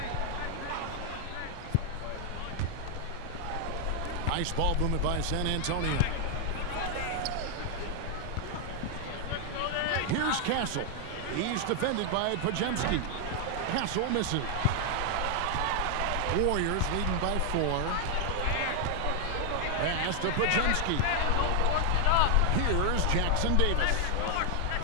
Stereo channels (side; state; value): both; different; correlation 0.00